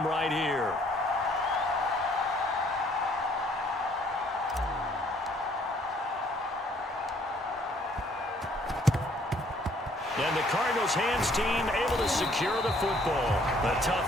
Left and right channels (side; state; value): both; normal; correlation 0.62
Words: right here. And the Cardinals hands team able to secure the football. A